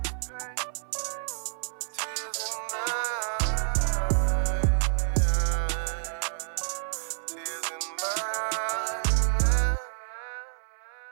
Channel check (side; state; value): left; silent; 59 dB below the other